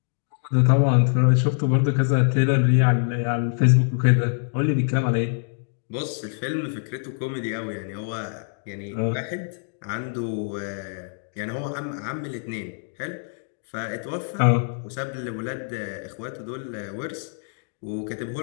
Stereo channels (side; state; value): right; silent; digital silence